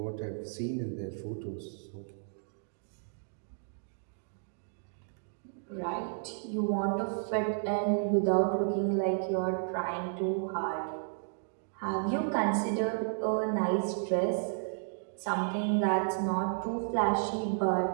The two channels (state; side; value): silent; left; digital silence